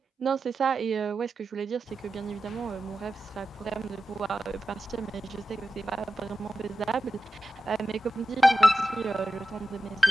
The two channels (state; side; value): normal; both; correlation 0.92